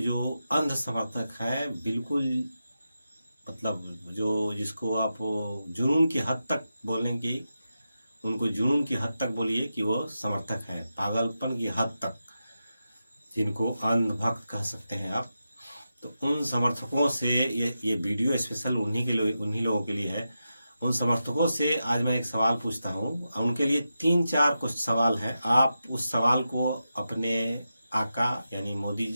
अंध समर्थक हैं, बिल्कुल मतलब जो जिसको आप जुनून की हद तक बोलेंगे, उनको जुनून की हद तक बोलिए कि वो समर्थक हैं, पागलपन की हद तक, जिनको अंधभक्त कह सकते हैं आप। तो उन समर्थकों से ये वीडियो स्पेशल उन्हीं लोगों के लिए है। उन समर्थकों से आज मैं एक सवाल पूछता हूँ, उनके लिए 3-4 कुछ सवाल हैं। आप उस सवाल को अपने आका यानी मोदी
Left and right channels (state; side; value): inverted; both; correlation -0.90